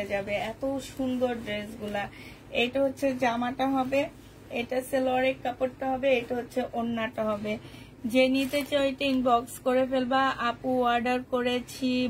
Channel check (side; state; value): both; identical; correlation 1.00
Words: যাবে, এত সুন্দর ড্রেসগুলা। এটা হচ্ছে জামাটা হবে, এটা সালোয়ারের কাপড়টা হবে, এটা হচ্ছে ওড়নাটা হবে। যে নিতে চাও এটা ইনবক্স করে ফেলবা। আপু অর্ডার করেছি,